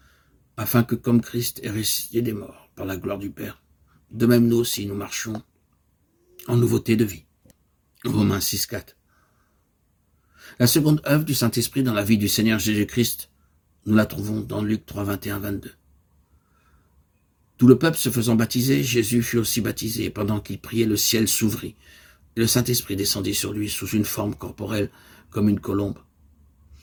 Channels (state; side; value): identical; both; correlation 1.00